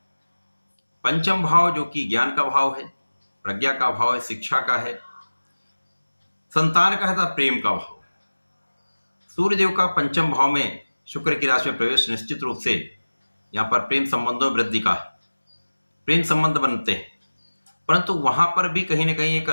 पंचम भाव जो कि ज्ञान का भाव है, प्रज्ञा का भाव है, शिक्षा का है, संतान का है तथा प्रेम का भाव। सूर्यदेव का पंचम भाव में शुक्र की राशि में प्रवेश निश्चित रूप से यहां पर प्रेम संबंधों में वृद्धि का है। प्रेम संबंध बनते हैं, परंतु वहां पर भी कहीं ना कहीं एक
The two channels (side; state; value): both; inverted; correlation -1.00